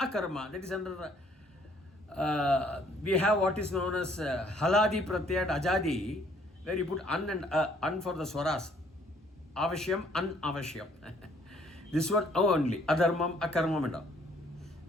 That is under, we have what is known as Haladi Pratyat Ajadi, where you put an and an for the swaras. Avashyam, Anavashyam. This one only. Adharmam, Akarmam and all.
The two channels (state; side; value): normal; both; correlation 0.62